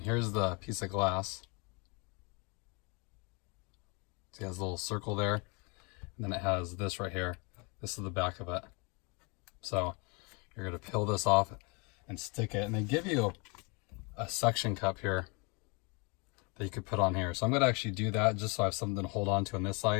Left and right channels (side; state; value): right; quieter; 31.3 dB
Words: here's the piece of glass. See, it has a little circle there, and then it has this right here. This is the back of it. So you're going to peel this off and stick it, and they give you a suction cup here that you could put on here. So I'm going to actually do that just so I have something to hold on to on this